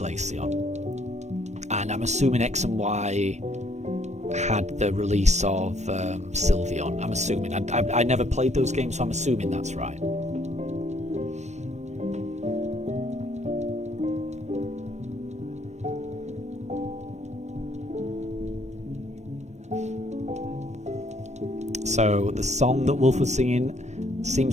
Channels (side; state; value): left; late; 0.33 ms